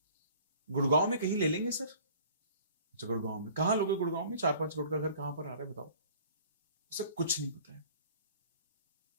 गुड़गांव में कहीं ले लेंगे सर। अच्छा गुड़गांव में कहाँ लोगे? गुड़गांव में 4-5 करोड़ का घर कहाँ पर आ रहा है बताओ? उसे कुछ नहीं पता है,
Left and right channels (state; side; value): inverted; both; correlation -0.50